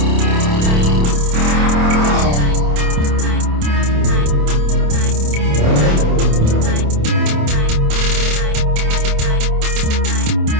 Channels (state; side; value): late; left; 27 ms